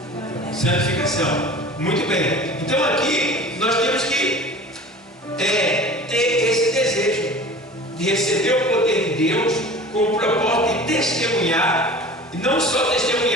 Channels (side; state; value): both; normal; correlation 0.40